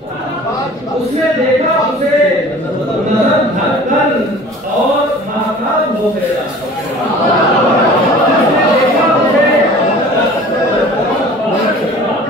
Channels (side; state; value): both; normal; correlation 0.45